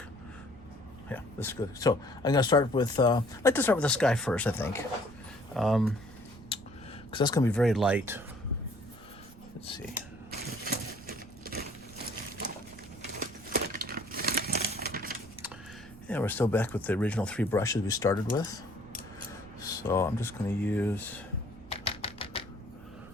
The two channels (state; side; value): noise; right; rumble, 20 dB below the sound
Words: Yeah, this is good. So I'm gonna start with, I'd like to start with the sky first, I think. Because that's gonna be very light. Let's see. Yeah, we're still back with the original 3 brushes we started with. So I'm just gonna use